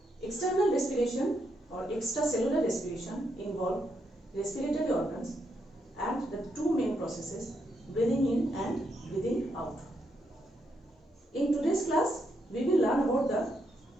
external respiration or extracellular respiration involve respiratory organs and the two main processes, breathing in and breathing out. In today's class, we will learn about the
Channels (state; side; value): normal; both; correlation 0.79